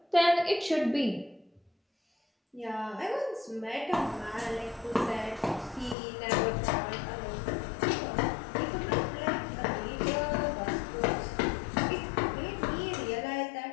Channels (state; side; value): drops out; right; at 6.0 s